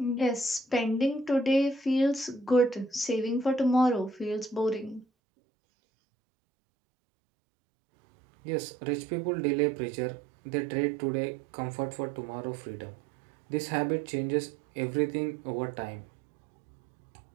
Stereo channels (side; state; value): left; drops out; at 5.1 s